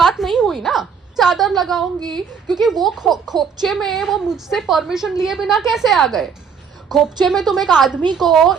नहीं हुई ना. चादर लगाऊंगी क्योंकि वो खोपचे में वो मुझसे परमिशन लिए बिना कैसे आ गए. खोपचे में तुम एक आदमी को,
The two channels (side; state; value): left; quieter; 6.4 dB